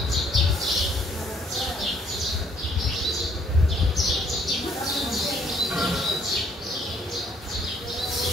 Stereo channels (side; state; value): both; normal; correlation 0.64